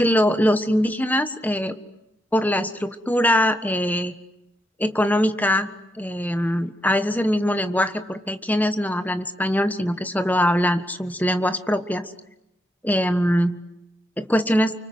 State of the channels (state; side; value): normal; both; correlation 0.81